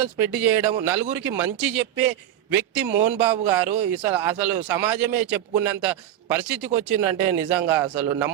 స్ప్రెడ్ చేయడం, నలుగురికి మంచి చెప్పే వ్యక్తి మోహన్ బాబు గారు అసలు సమాజమే చెప్పుకున్నంత పరిస్థితికి వచ్చిందంటే నిజంగా అసలు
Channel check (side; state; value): left; quieter; 11.5 dB